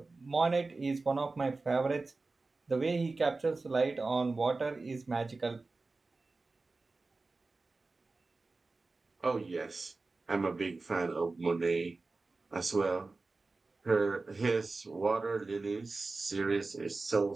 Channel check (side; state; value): left; quieter; 3.6 dB